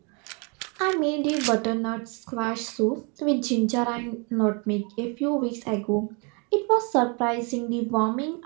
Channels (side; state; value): left; quieter; 34.1 dB